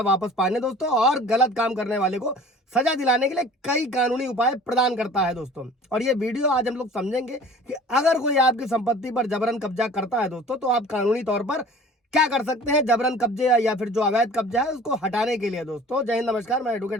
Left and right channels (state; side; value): normal; both; correlation 0.46